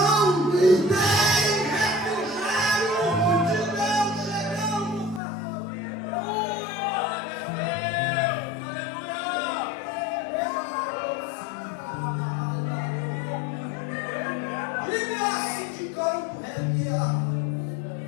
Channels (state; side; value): drops out; right; at 5.2 s